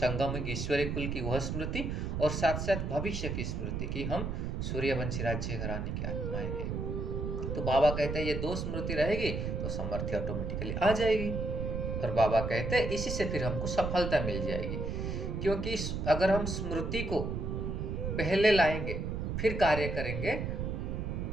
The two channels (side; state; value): right; noise; rumble, 2 dB below the sound